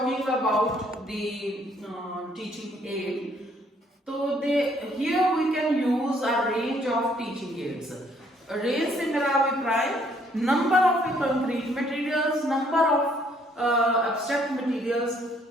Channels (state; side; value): normal; both; correlation 0.66